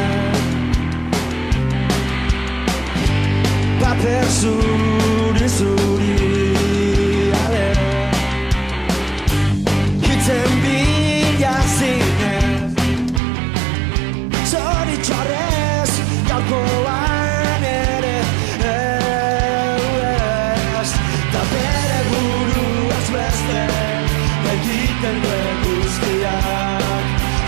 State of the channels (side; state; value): left; drops out; at 13.2 s